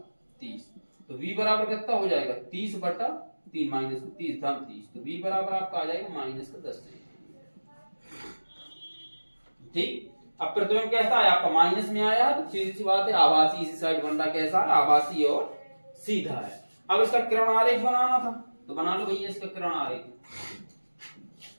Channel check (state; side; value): inverted; both; correlation -1.00